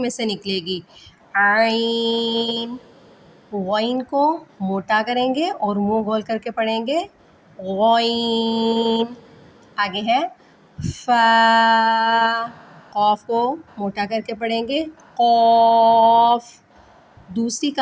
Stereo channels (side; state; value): both; identical; correlation 1.00